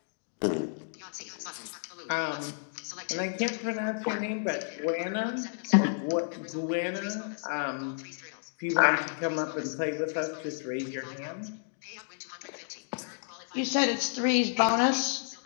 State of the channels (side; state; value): right; silent; digital silence